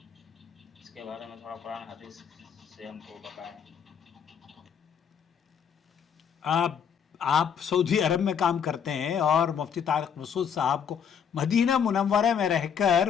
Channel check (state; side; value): quieter; right; 7.6 dB